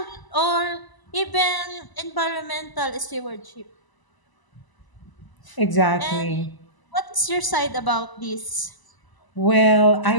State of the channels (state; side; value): late; right; 1.0 ms